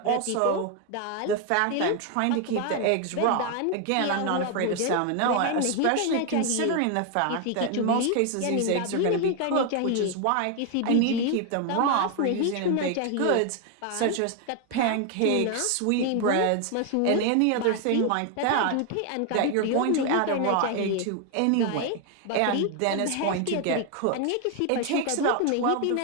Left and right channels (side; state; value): both; different; correlation 0.01